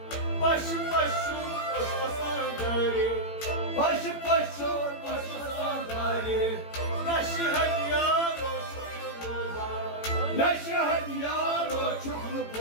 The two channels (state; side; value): late; right; 18 ms